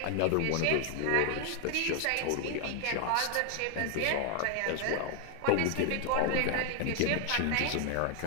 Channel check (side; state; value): both; different; correlation 0.00